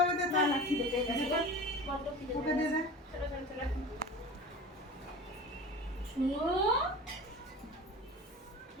ওদের না না খিদে পেয়ে গেছে। বড্ড খিদে ওকে পেয়ে দে গেছে। দে ছোট ছোট ছোট। শুনো,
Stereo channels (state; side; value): normal; both; correlation 0.35